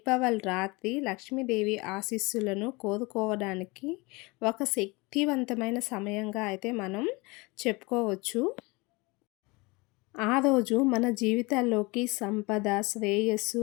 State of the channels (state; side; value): quieter; right; 25.4 dB